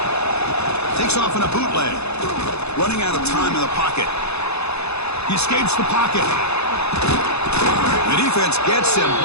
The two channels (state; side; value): late; right; 0.80 ms